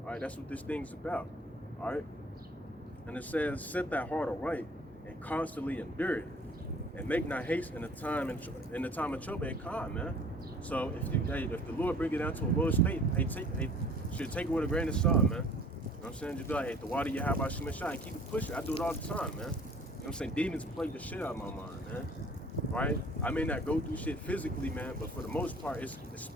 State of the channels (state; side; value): normal; both; correlation 0.51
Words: All right, that's what this thing's about. All right? And it says, set that heart aright and constantly endure it. And make not haste in the time of trouble and calm, man. So if the Lord bring it down to a low state, should take it with a grain of salt, man. You know what I'm saying? Just be like, hey, the water you have by Shemeshah and keep it pushing. I do it all the time, man. You know what I'm saying? Demons plague the shit out of my mind, man. Right? I may not go through shit physically, man, but for the most part, it's